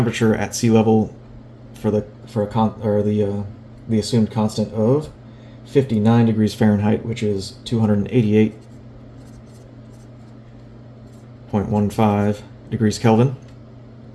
at sea level for the assumed constant of 59 degrees Fahrenheit, which is 288.15 degrees Kelvin.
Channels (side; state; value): both; identical; correlation 1.00